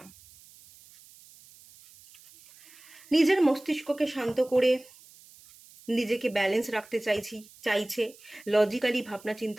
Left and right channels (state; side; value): noise; right; hiss, 24 dB below the sound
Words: নিজের মস্তিষ্ককে শান্ত করে নিজেকে ব্যালেন্স রাখতে চাইছে, লজিক্যালি ভাবনা